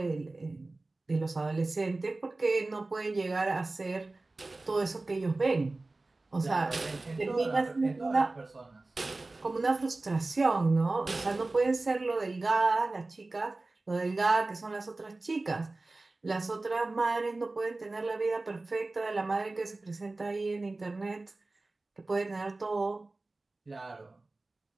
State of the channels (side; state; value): left; quieter; 3.2 dB